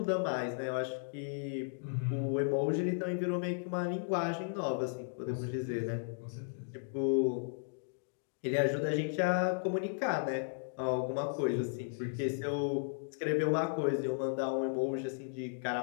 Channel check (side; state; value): right; silent; digital silence